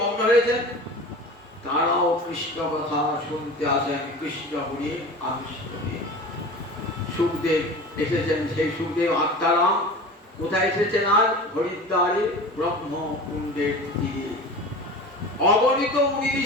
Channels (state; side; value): normal; both; correlation 0.35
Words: মগ্ন হয়েছেন, তারাও কৃষ্ণ কথা শুনতে আসেন, কৃষ্ণ গুণে আকৃষ্ট হয়ে। সুখদেব এসেছেন, সেই সুখদেব আত্মারাম কোথায় এসেছেন? আজ হরিদ্বারে ব্রহ্মকুণ্ডের তীরে। অগণিত মুনি